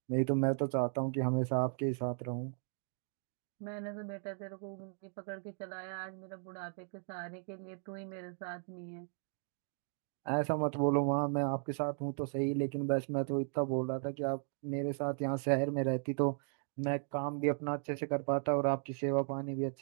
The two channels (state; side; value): silent; left; 53 dB below the other